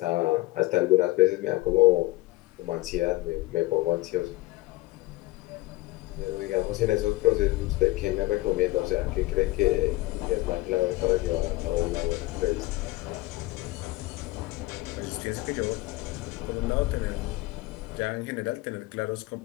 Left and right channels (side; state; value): right; quieter; 19.6 dB